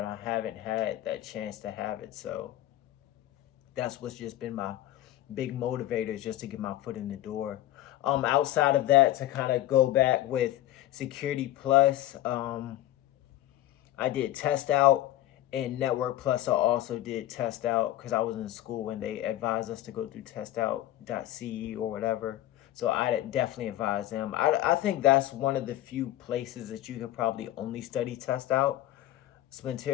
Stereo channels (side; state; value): right; quieter; 14.3 dB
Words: I haven't had that chance to have it. So that's what's just been my big motivators, just to get my foot in the door. Outside of that, to kind of go back with Security Plus, I did test out, and Network Plus I also did test out because I was in school and they advised us to go through testout.ce or whatever. So I definitely advise them. I think that's one of the few places that you could probably only study test out.